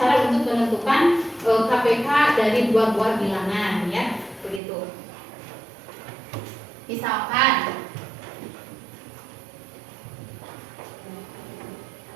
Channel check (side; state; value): left; drops out; at 4.6 s